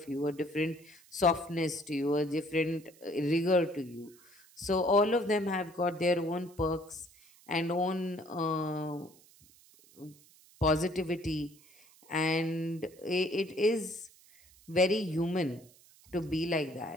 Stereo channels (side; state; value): right; noise; hiss, 26 dB below the sound